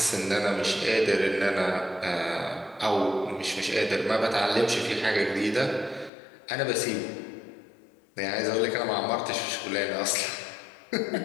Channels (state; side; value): drops out; right; at 6.1 s